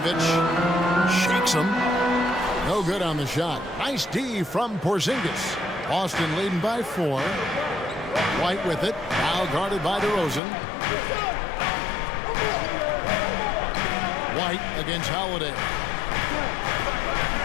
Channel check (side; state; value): right; drops out; at 10.4 s